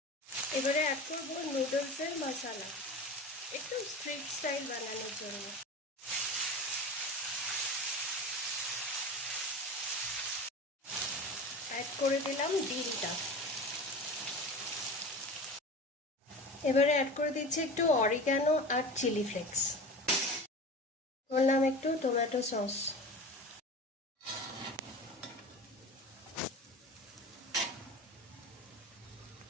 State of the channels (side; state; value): both; normal; correlation 0.33